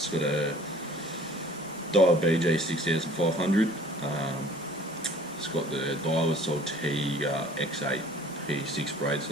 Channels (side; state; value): both; normal; correlation 0.51